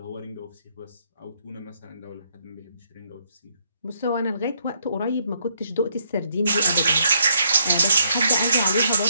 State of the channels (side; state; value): both; inverted; correlation -0.72